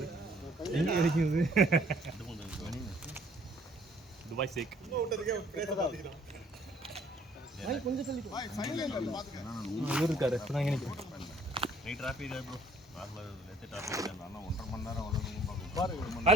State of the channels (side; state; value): both; normal; correlation 0.60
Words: எங்க கிடைக்குது? துபாய் சேக். இவர் இருக்காரு. இப்ப நான் நினைக்கிறேன்.